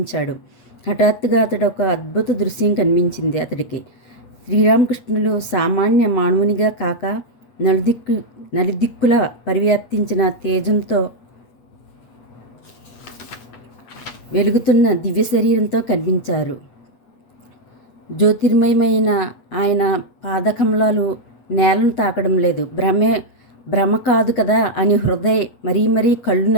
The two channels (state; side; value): late; right; 8.3 ms